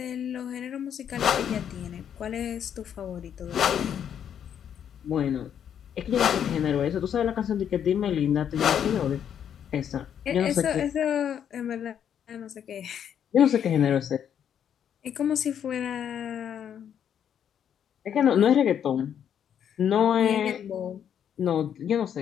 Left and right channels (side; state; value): right; quieter; 8.9 dB